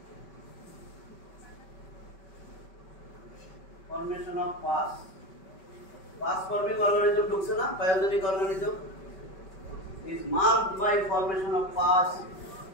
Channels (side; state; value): right; late; 5.2 ms